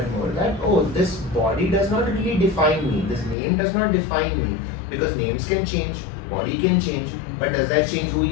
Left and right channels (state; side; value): drops out; right; at 3.4 s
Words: more that, oh, this body does not really define me, this name does not define me, because names can change, body can change, but does that change who